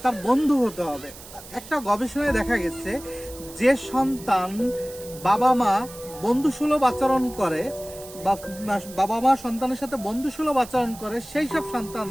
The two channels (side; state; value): right; noise; hiss, 17 dB below the sound